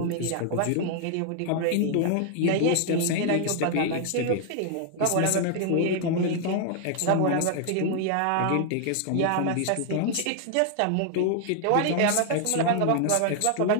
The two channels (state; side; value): different; both; correlation 0.00